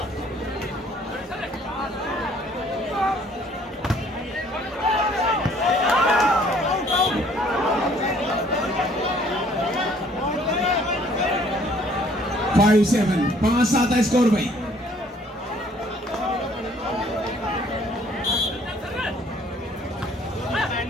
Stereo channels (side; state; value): both; normal; correlation 0.59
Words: फाइव 7 5-7 है स्कोर भाई।